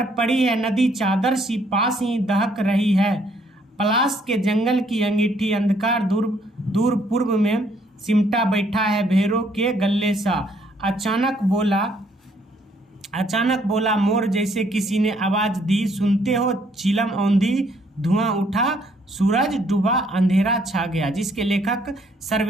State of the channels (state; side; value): normal; both; correlation 0.67